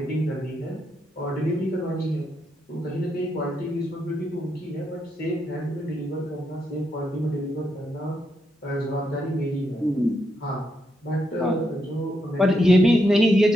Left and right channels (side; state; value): both; normal; correlation 0.80